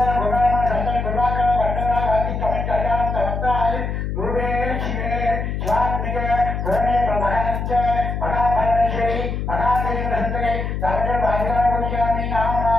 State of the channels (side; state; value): left; noise; hum, 3 dB below the sound